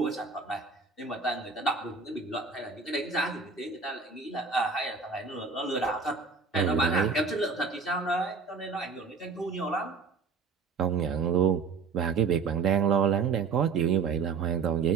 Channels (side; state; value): left; quieter; 5.0 dB